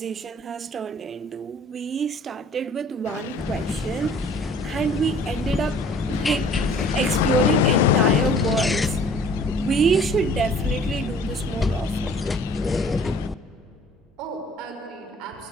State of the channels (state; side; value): normal; both; correlation 0.52